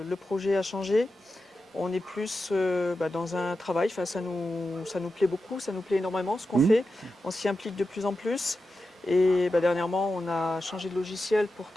projet a changé. On est plus dans un travail. Enfin, ça nous plaît beaucoup, ça nous plaît énormément ce qu'on fait. On s'y implique de plus en plus. Et dernièrement, on a changé de logiciel pour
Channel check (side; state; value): both; normal; correlation 0.91